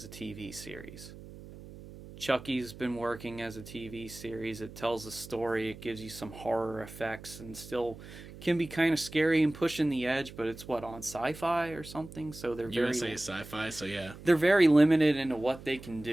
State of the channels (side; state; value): right; noise; hum, 16 dB below the sound